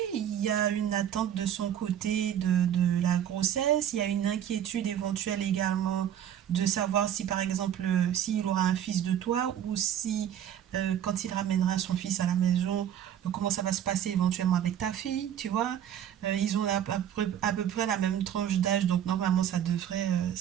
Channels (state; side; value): quieter; left; 10.1 dB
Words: il y a une attente de son côté de la grossesse, il y a une inquiétude éventuelle également de savoir si par exemple s'il aura un fils de toi ou si quand il ramènera son fils à la maison, comment ça va se passer éventuellement avec ta fille, tu vois. Ils ont à peu près la même tranche d'âge, donc normalement